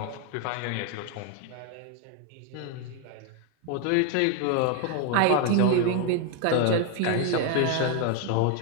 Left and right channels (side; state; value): both; different; correlation 0.01